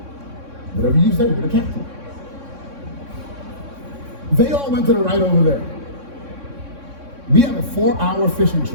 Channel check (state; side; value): late; left; 3.6 ms